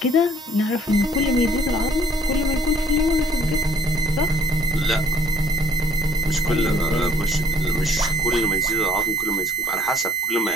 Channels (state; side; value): normal; both; correlation 0.57